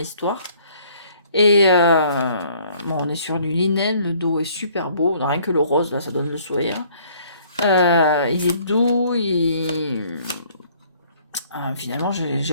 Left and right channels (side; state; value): both; inverted; correlation -0.59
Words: Et bon, on est sur du linen, le dos est super beau, rien que le rose là, ça donne le sourire. Il est doux, finalement j'ai